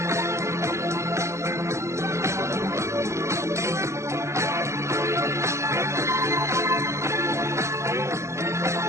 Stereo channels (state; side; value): late; left; 0.14 ms